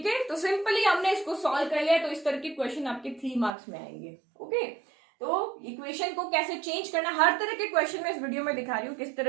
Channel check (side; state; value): left; drops out; at 3.5 s